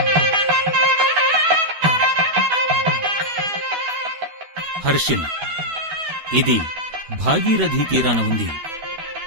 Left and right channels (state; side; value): late; left; 12 ms